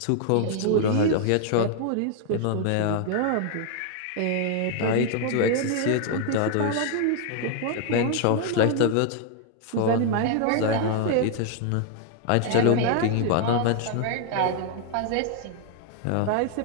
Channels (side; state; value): both; different; correlation 0.00